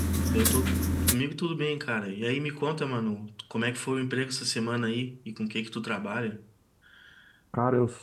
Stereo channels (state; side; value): identical; both; correlation 1.00